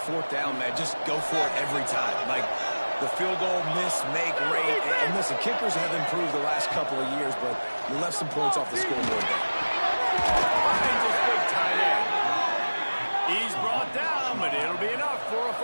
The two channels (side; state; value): both; inverted; correlation -1.00